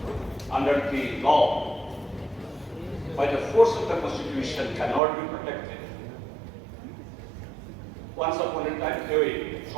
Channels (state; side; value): drops out; left; at 5.0 s